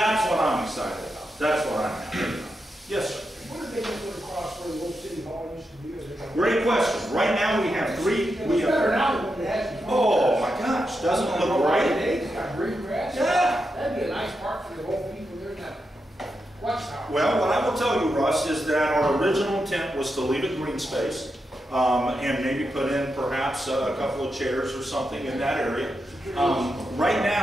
what I'm excited about. That's what I'm happy about. Yes, sir. What are they going to put across where the old city hall used to be? Great question. Right now we have 3. It's better now than it has been. Oh my gosh, doesn't it look great? It's got green grass. Yeah. That'd be a nice park for the old people there in that watchtower. Well, what I will tell you, Russ, is that our original intent was to leave it green space and maybe put in perhaps a couple of chairs or something in that area. Right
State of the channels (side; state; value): both; normal; correlation 0.86